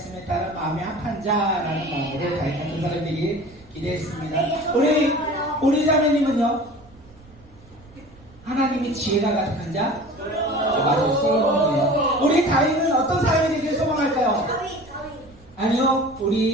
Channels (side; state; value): right; noise; rumble, 24 dB below the sound